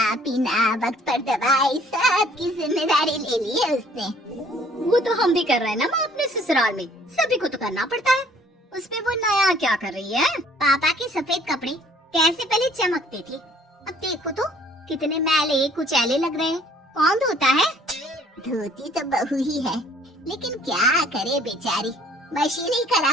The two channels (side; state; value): both; normal; correlation 0.58